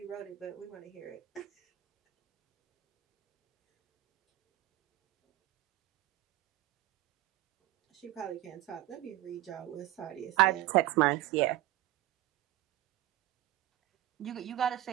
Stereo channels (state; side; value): quieter; left; 15.4 dB